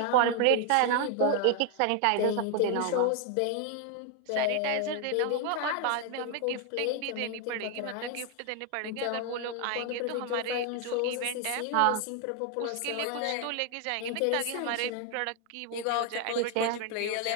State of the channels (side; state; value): both; different; correlation 0.00